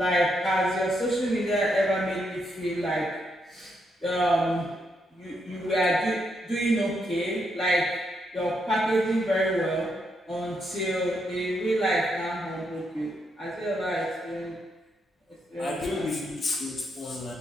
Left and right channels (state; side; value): normal; both; correlation 0.79